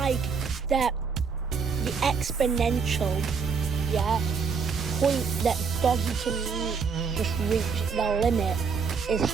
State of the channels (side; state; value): left; quieter; 5.6 dB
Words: that the exponential point that Doggie can just reach the limit is